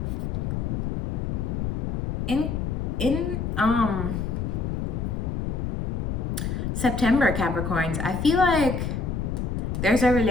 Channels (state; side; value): noise; left; rumble, 1 dB below the sound